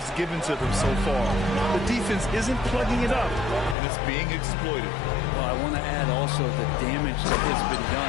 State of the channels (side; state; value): right; drops out; at 3.8 s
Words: given to them so far. The defense isn't plugging it up, and it's being exploited. Well, I want to add also the damage that has been